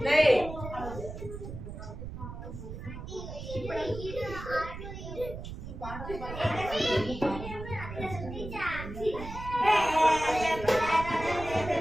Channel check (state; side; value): noise; right; rumble, 9 dB below the sound